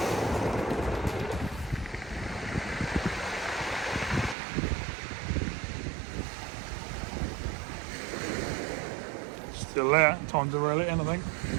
Still there, time to reel it in, I think.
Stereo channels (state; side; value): drops out; left; at 4.4 s